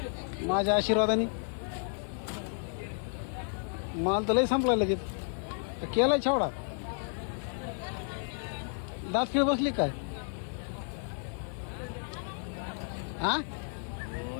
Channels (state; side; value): silent; right; 56 dB below the other